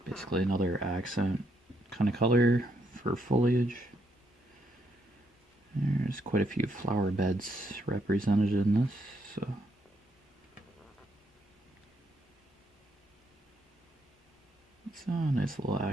basically another accent kind of color for foliage. There's quite a few flower beds represented in this, so it's a nice little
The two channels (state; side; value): normal; both; correlation 0.76